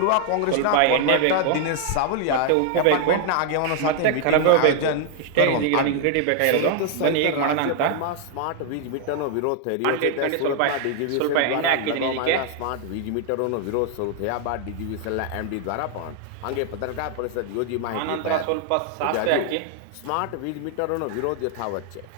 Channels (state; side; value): different; both; correlation 0.00